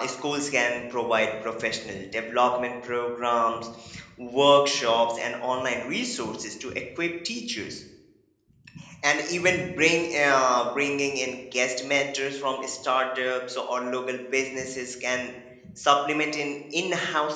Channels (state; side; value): identical; both; correlation 1.00